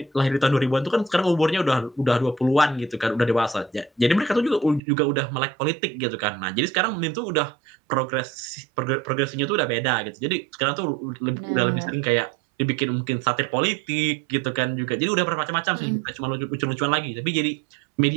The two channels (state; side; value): drops out; left; at 4.8 s